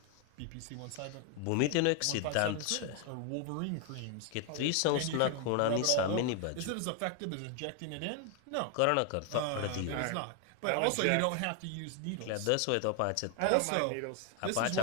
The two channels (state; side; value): different; both; correlation 0.01